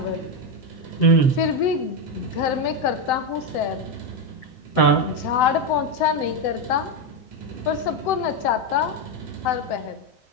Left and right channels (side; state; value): right; late; 7.8 ms